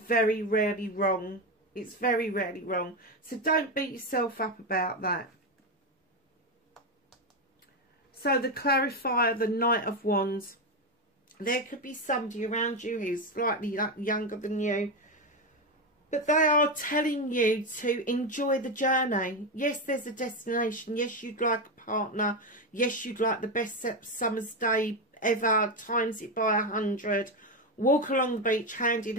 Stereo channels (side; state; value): both; normal; correlation 0.12